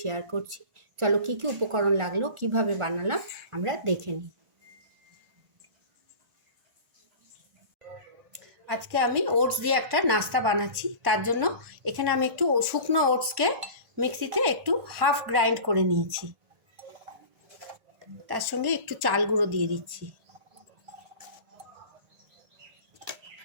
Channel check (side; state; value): left; late; 1.1 ms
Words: শেয়ার করছি। চলো কী কী উপকরণ লাগলো, কিভাবে বানালাম আমরা দেখে নিই। আজকে আমি ওটস দিয়ে একটা নাস্তা বানাচ্ছি। তার জন্য এখানে আমি একটু শুকনো ওটসকে মিক্সিতে একটু হাফ গ্রাইন্ড করে নিয়েছি। তার সঙ্গে একটু চাল গুঁড়ো দিয়ে দিচ্ছি।